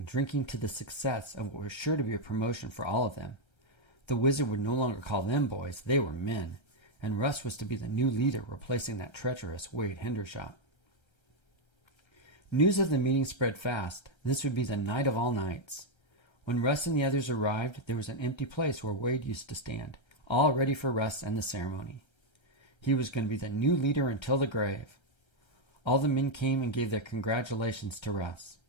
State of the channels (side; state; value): right; late; 1.3 ms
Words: drinking to the success of what was sure to be a promotion for all of them. The wizard would no longer call them boys, they were men, and Russ was to be the new leader, replacing that treacherous Wade Hendershot. News of the meeting spread fast. This would be the night of all nights. When Russ and the others arrived, there was an empty place where Wade used to stand, all ready for Russ and the ceremony. He was going to be the new leader until the grave. All the men came and gave their congratulations to Russ.